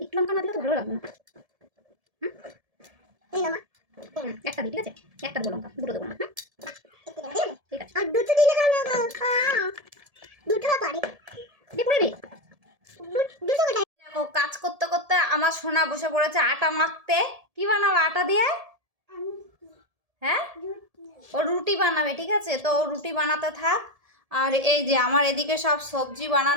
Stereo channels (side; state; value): left; late; 1.7 ms